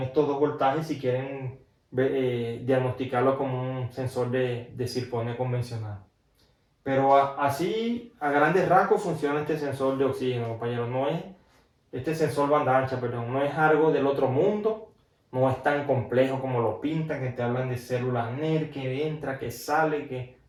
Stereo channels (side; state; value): both; identical; correlation 1.00